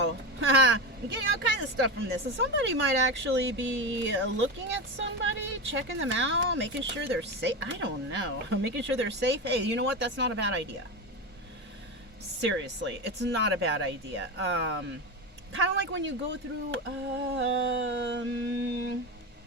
You're getting all kinds of stuff from this. So somebody might actually be looking at somebody, checking them out, making sure they're safe. I don't know. Making sure they're safe. Hey, you know what? That's not a bad idea. Seriously, it's not a bad idea. Kind of like when you go through, I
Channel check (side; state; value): both; normal; correlation 0.19